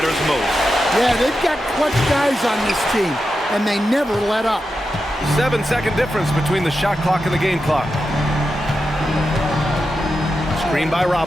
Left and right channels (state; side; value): normal; both; correlation 0.89